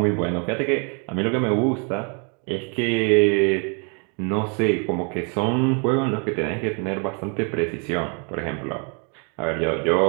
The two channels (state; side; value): quieter; left; 36.9 dB